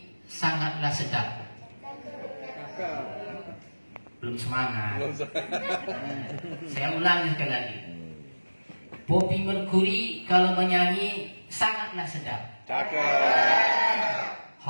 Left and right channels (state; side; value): inverted; both; correlation -1.00